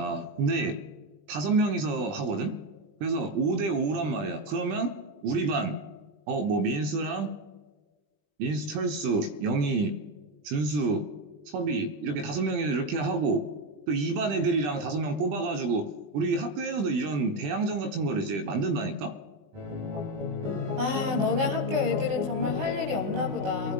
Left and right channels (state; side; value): late; left; 20 ms